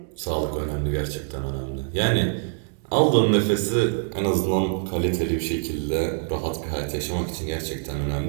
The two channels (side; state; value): left; silent; 62 dB below the other